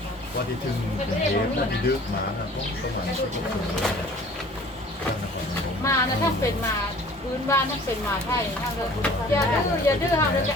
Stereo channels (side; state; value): both; normal; correlation 0.49